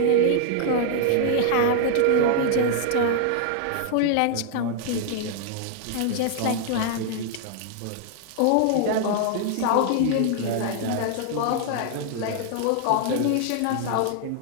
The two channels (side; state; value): both; different; correlation 0.00